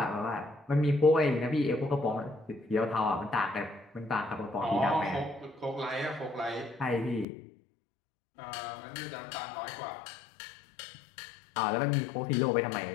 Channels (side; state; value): right; drops out; at 7.2 s